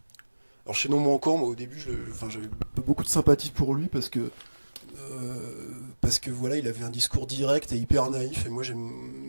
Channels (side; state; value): both; inverted; correlation -1.00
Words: Alors Chaînon Manquant, moi au début, j'avais beaucoup de sympathie pour lui parce que voilà, il avait un discours direct et hyper naïf. Et moi j'aime